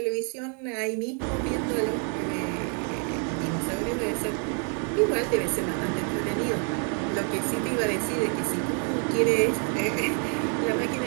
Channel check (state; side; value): quieter; left; 39.7 dB